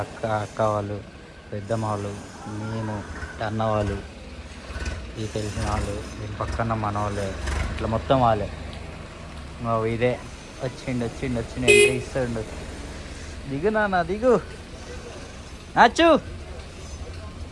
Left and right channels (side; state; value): both; identical; correlation 1.00